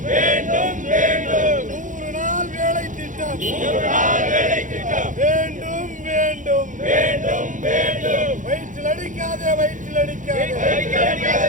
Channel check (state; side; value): late; left; 0.37 ms